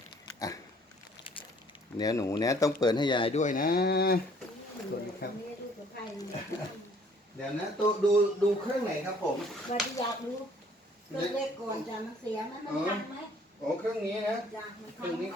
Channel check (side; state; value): both; normal; correlation 0.59